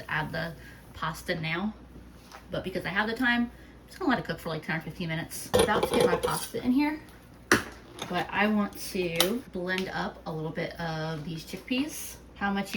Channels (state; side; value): identical; both; correlation 1.00